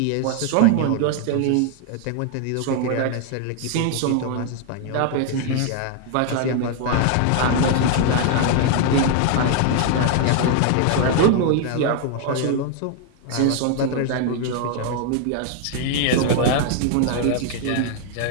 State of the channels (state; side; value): different; both; correlation 0.00